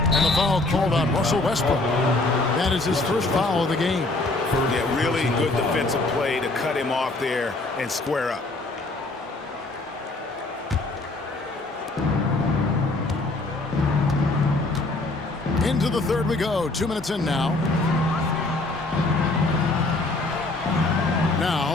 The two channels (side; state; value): right; quieter; 3.0 dB